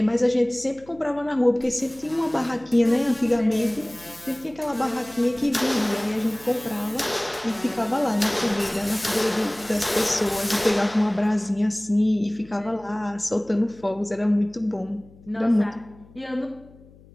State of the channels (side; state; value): left; noise; hum, 24 dB below the sound